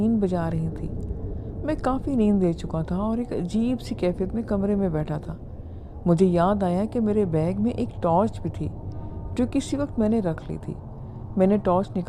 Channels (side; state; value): both; identical; correlation 1.00